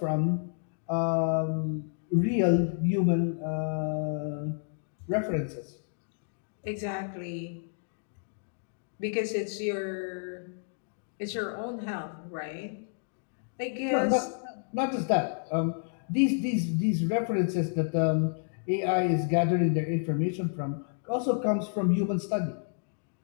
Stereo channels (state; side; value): silent; right; 58 dB below the other